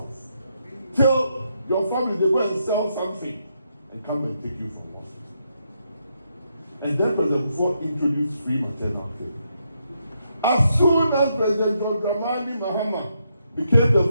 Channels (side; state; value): both; inverted; correlation -0.79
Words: Till your family, they go and sell something and come and take you from the hospital. And then President Kufuor introduced free maternal care. As soon as President John Dramani Mahama became the